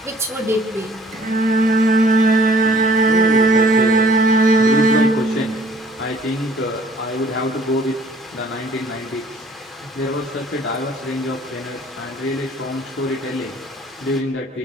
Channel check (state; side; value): normal; both; correlation 0.56